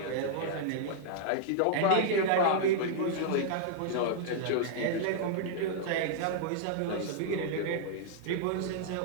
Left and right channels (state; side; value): different; both; correlation -0.01